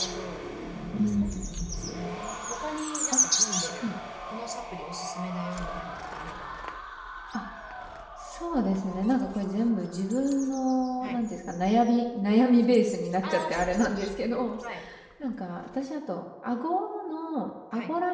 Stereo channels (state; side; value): identical; both; correlation 1.00